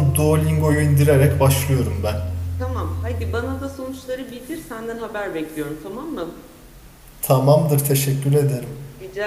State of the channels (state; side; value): identical; both; correlation 1.00